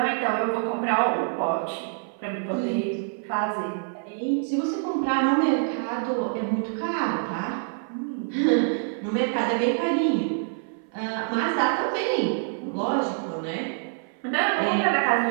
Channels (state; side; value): silent; left; 56 dB below the other